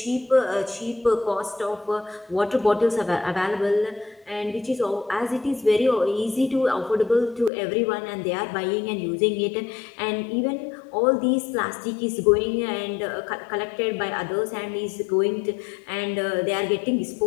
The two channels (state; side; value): drops out; right; at 7.5 s